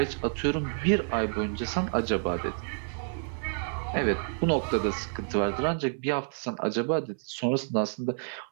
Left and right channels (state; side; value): silent; left; 58 dB below the other